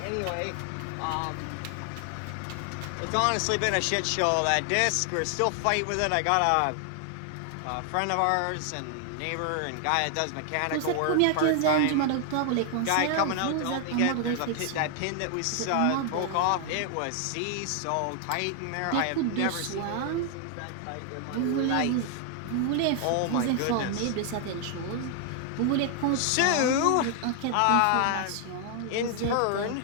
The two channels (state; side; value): different; both; correlation 0.00